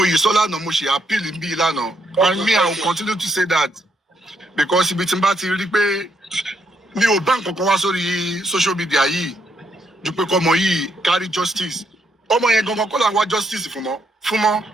yìí sọ lánàá mo ṣe appeal bí lánàá and me I will continue to say that because ibi tí n bá ti rí pé mi ò bá nǹkan kan wá sórí social media yìí ju pé kọ́mọ yìí carry justice ọmọ yẹn gangan kọ́ là ń wá justice fún fúnmọ́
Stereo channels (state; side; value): normal; both; correlation 0.76